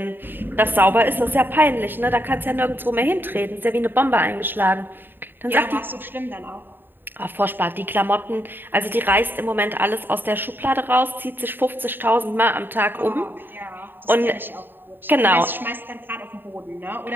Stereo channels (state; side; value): late; left; 0.095 ms